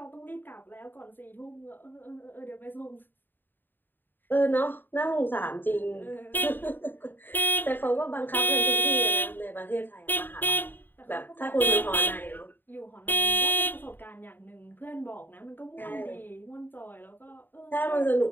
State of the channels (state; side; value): late; right; 0.092 ms